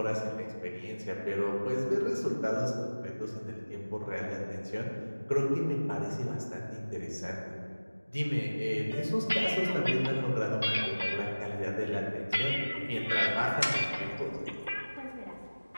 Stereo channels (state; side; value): inverted; both; correlation -1.00